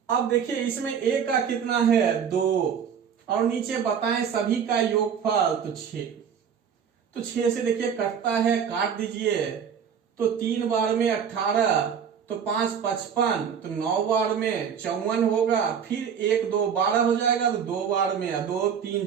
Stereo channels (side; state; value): left; quieter; 7.5 dB